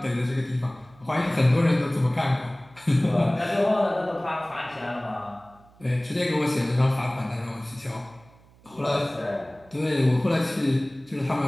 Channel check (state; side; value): noise; right; hum, 27 dB below the sound